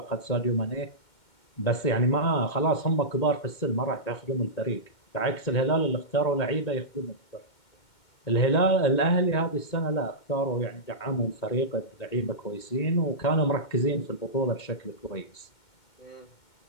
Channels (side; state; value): right; late; 2.2 ms